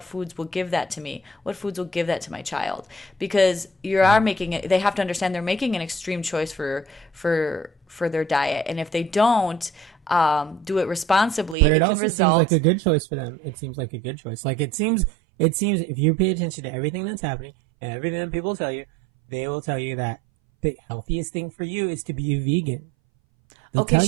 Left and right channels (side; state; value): left; drops out; at 11.6 s